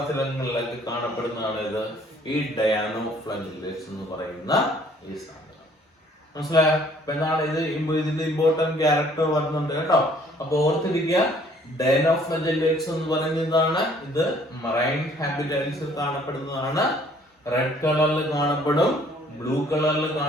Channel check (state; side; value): normal; both; correlation 0.59